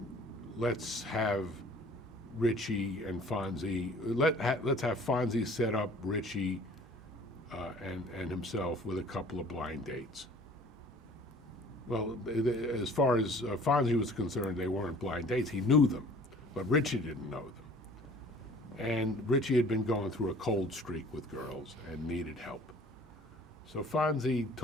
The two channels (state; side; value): normal; both; correlation 0.50